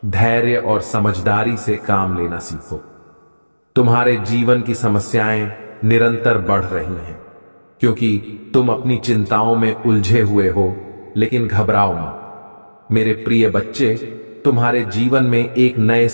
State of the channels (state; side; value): inverted; both; correlation -1.00